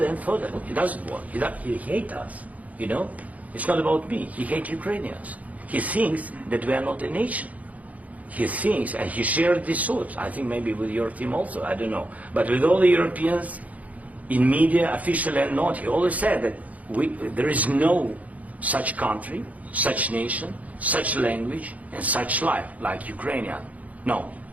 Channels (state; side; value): late; left; 0.072 ms